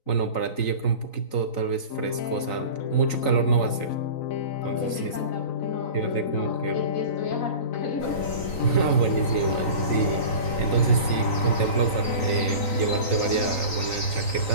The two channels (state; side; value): late; right; 3.9 ms